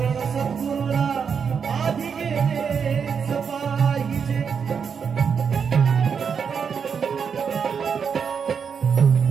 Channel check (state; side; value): quieter; left; 6.5 dB